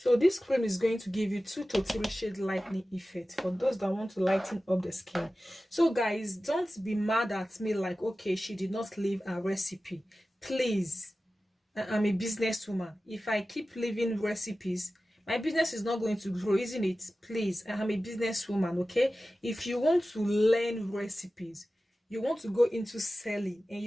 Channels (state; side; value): normal; both; correlation 0.95